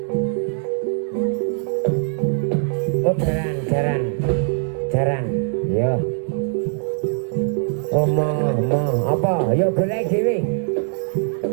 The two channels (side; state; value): left; silent; digital silence